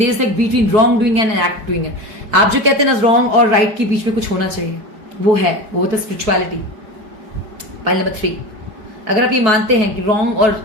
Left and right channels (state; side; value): late; left; 4.6 ms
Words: is like between wrong doing and act doing है। आप जो कहते हैं ना रॉन्ग और राइट के बीच में कुछ होना चाहिए, वो है, वो तो स्पिरिचुअलिटी। पाइल नंबर 3, अगर आप ये मानते हैं कि रॉन्ग और